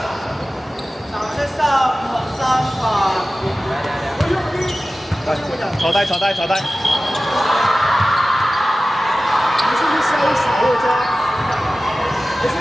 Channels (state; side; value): normal; both; correlation 0.96